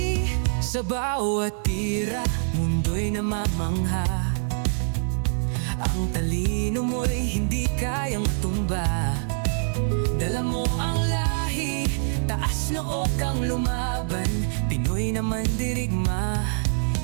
Sa bawat tira, mundo'y namamangha. Ang talino mo'y hindi kayang matumba. Dala mo ang lahi, taas noo kang lumaban. Pinoy naman dirigma,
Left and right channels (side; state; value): left; silent; 62 dB below the other